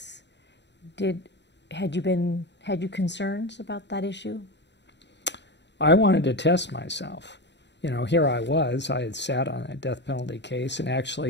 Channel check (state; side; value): late; right; 0.51 ms